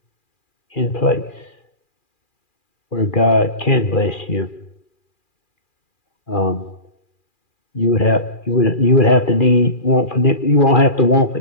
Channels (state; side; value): late; right; 2.4 ms